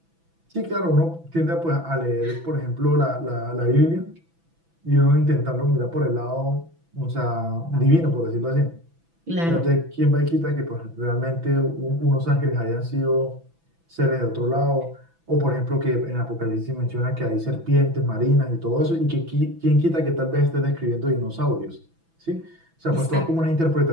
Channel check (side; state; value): left; late; 6.0 ms